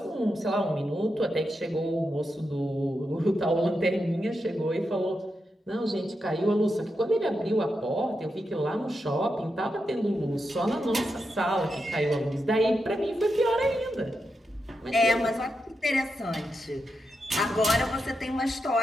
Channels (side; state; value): both; normal; correlation 0.86